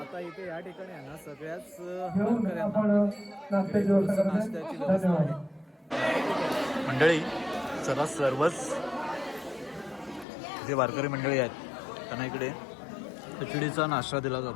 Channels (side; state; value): right; drops out; at 10.2 s